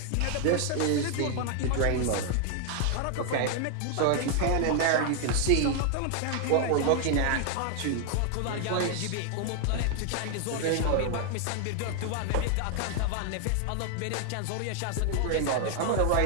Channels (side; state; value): both; different; correlation 0.00